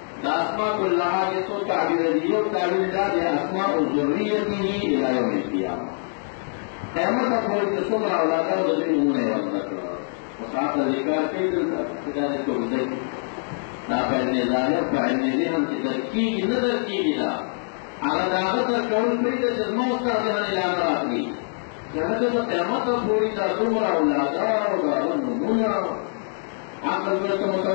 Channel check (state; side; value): silent; right; digital silence